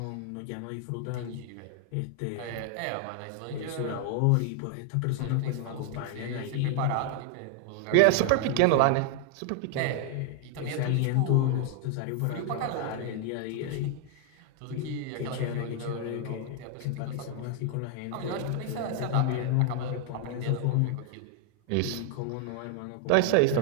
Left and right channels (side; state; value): both; different; correlation 0.00